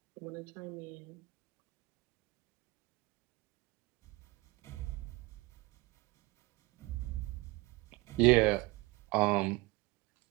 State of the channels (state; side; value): quieter; left; 22.5 dB